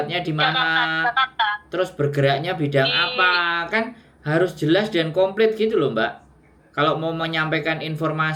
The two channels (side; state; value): both; identical; correlation 1.00